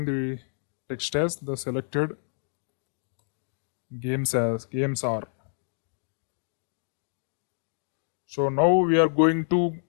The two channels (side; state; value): right; silent; digital silence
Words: the text as the selected games are. So now we are going to